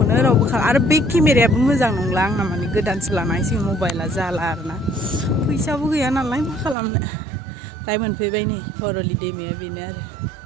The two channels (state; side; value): drops out; left; at 6.8 s